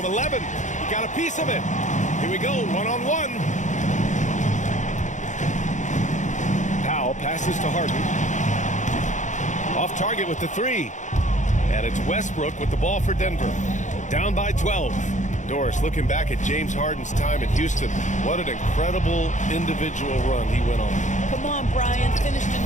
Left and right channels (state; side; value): late; right; 0.35 ms